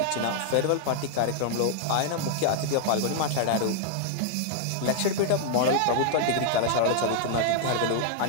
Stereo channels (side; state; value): both; different; correlation -0.01